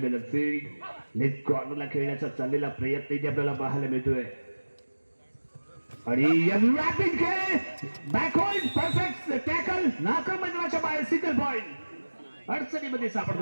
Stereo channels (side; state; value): both; inverted; correlation -1.00